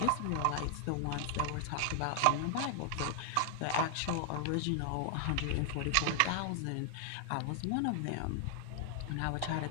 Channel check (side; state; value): both; different; correlation 0.00